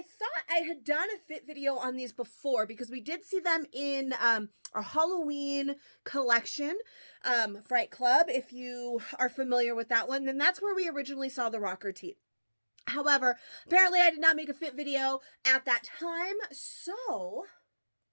thought I had done a fit video on these before because we did see them in our Halloween collection, Fright Club. If you are familiar with that one, then that's where we originally saw the rocker tee. However, apparently I did not make a fit video at that time, so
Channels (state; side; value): inverted; both; correlation -1.00